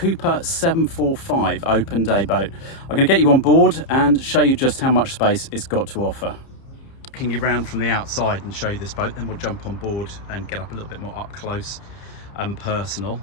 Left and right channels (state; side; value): late; right; 30 ms